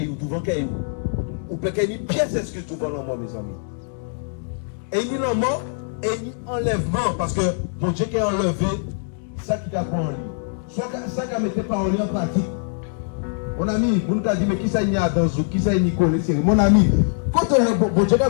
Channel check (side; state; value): right; silent; digital silence